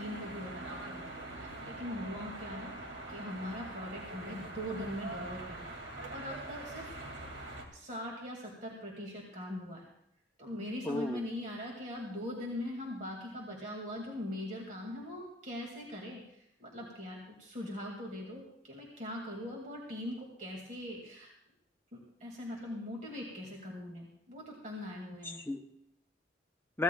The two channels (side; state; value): both; normal; correlation 0.46